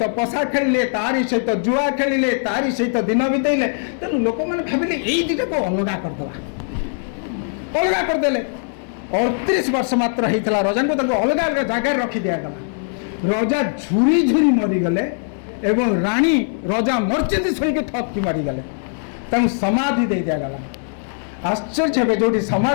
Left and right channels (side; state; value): right; silent; digital silence